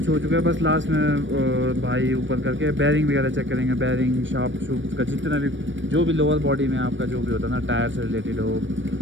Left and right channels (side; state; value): left; late; 0.55 ms